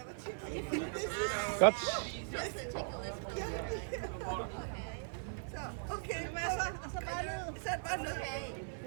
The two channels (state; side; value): silent; left; 52 dB below the other